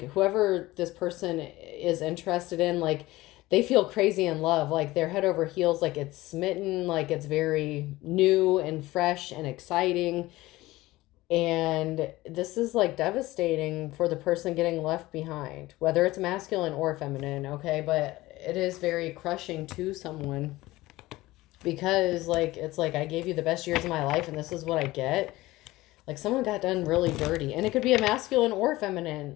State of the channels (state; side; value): quieter; right; 18.5 dB